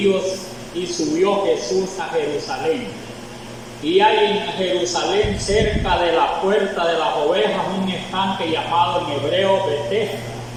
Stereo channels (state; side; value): identical; both; correlation 1.00